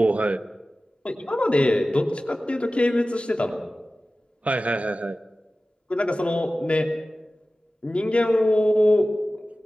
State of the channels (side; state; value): both; normal; correlation 0.96